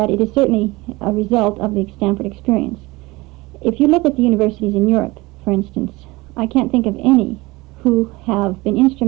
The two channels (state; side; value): quieter; left; 21.8 dB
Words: it is certainly a result of the Stanford experience. If you look at the universities in Europe, for instance, I can't think of any who have been